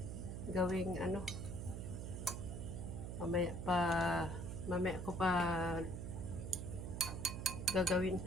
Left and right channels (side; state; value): right; noise; hum, 5 dB below the sound